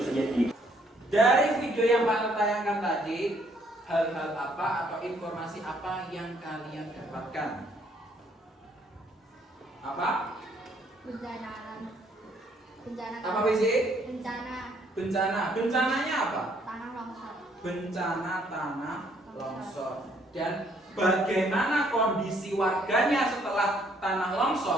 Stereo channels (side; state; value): both; normal; correlation 0.66